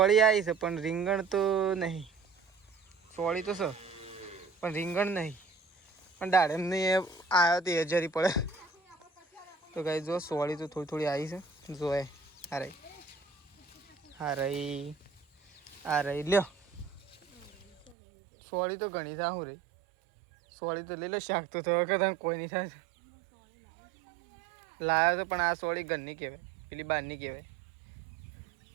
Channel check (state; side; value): drops out; left; at 17.9 s